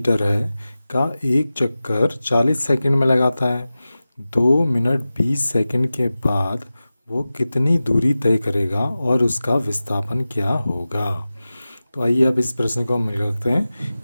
है का एक चक्कर 40 सेकंड में लगाता है। 2 मिनट 20 सेकंड के बाद वो कितनी दूरी तय करेगा और उसका विस्थापन क्या होगा। तो आइए अब इस प्रश्न को हम मिल करते हैं।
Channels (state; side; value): inverted; both; correlation -0.95